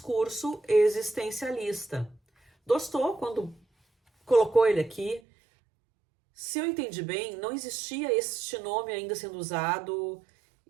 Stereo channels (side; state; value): left; drops out; at 5.2 s